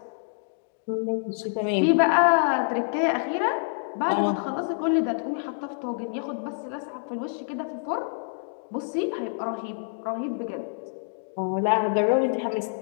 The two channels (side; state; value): right; silent; digital silence